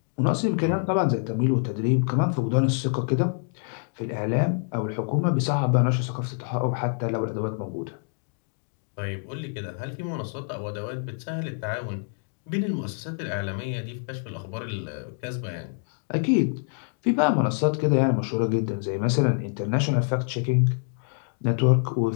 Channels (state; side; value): silent; right; 61 dB below the other